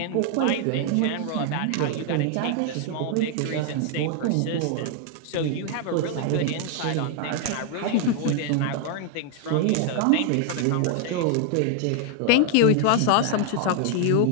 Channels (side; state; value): both; different; correlation 0.00